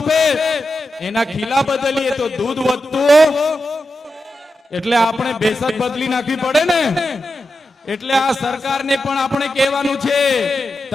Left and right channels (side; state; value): both; normal; correlation 0.89